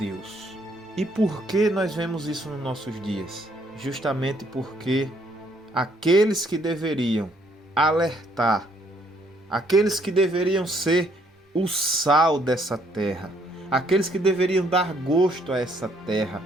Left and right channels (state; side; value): normal; both; correlation 0.67